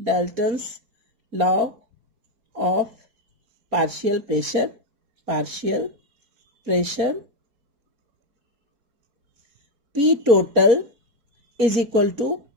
of partial pressure, P total is equal to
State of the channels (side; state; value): left; late; 4.7 ms